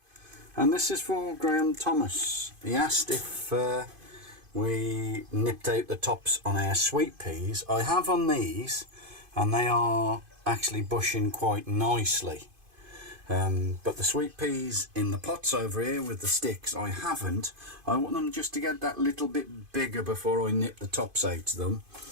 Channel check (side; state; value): left; late; 2.5 ms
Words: And this is for Graham Thomas. He asked if we nipped out the tops on our sweet peas. I have on these, and they are actually bushing quite nicely. But the sweet peas in the pots over here with the sticks, I haven't. I want them just to get that little bit bigger before I nip the tops out of them,